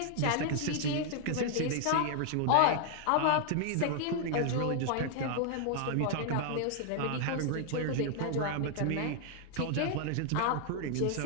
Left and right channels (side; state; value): both; different; correlation 0.00